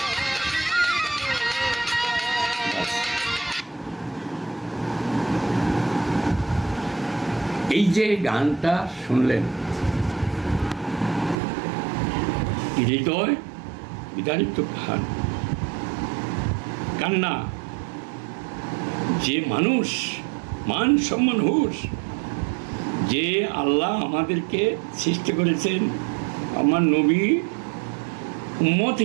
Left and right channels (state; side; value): drops out; left; at 11.4 s